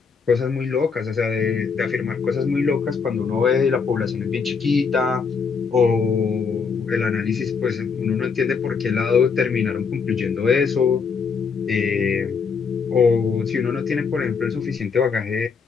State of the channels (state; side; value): quieter; right; 5.6 dB